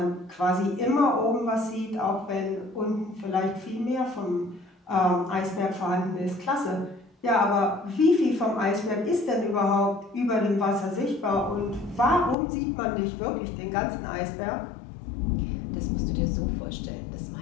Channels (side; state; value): right; drops out; at 12.4 s